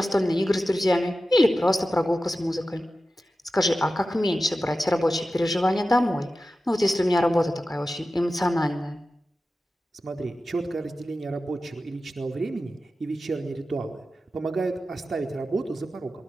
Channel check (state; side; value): normal; both; correlation 0.93